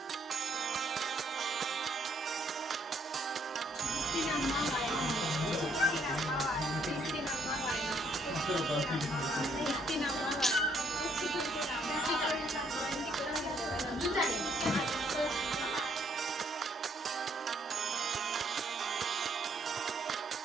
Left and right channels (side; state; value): both; normal; correlation 0.68